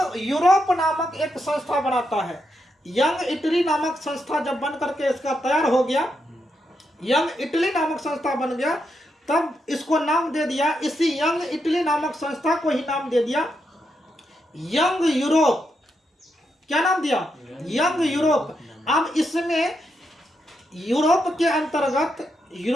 यूरोप नामक एक संस्था बनाता है। यंग इटली नामक संस्था जब बन करके इसका तैयार हो गया, यंग इटली नामक संस्था बन गया, तब इसको नाम दे दिया, इसी यंग इटली नामक संस्था को ही नाम दे दिया यंग यूरोप। क्या नाम दिया, यंग यूरोप। अब इसमें यूरोप के अंतर्गत,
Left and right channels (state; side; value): normal; both; correlation 0.82